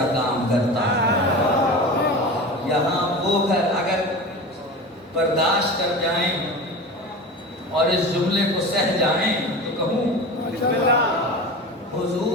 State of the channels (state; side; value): normal; both; correlation 0.31